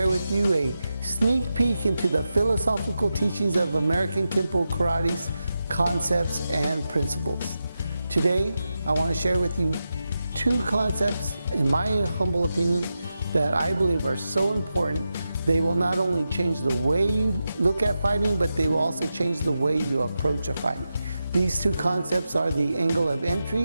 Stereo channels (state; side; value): inverted; both; correlation -0.90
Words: with you a sneak peek into the philosophical teachings of American Kenpo Karate's concepts and principles. Today, I want to share with you two concepts, in my humble opinion, that I believe are so important. They will not only change the way you look at fighting, but they will also change the way you approach a fight. These two concepts are the angle of